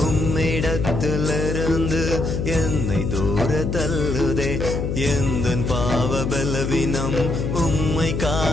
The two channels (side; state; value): left; noise; hum, 2 dB below the sound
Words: உம்மிடத்திலிருந்து என்னை தூர தள்ளுதே. எந்தன் பாவ பலவீனம் உம்மை